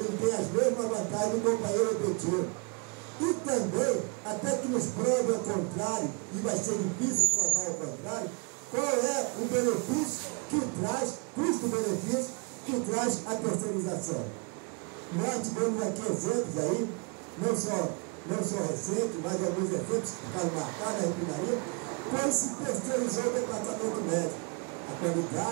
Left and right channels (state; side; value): quieter; left; 32.6 dB